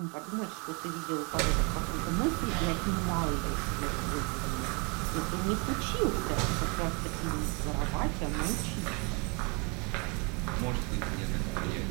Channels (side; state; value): left; quieter; 31.9 dB